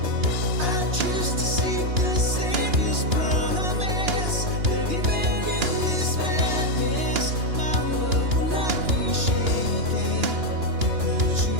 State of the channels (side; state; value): left; late; 2.9 ms